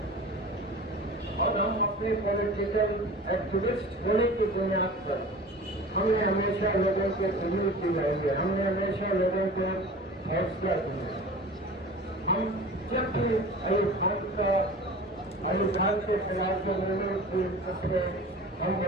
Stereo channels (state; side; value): normal; both; correlation 0.38